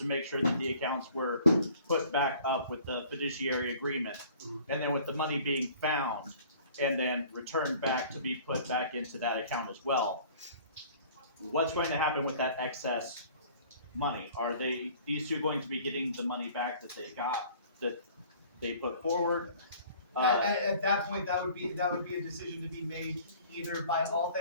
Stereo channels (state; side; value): inverted; both; correlation -0.51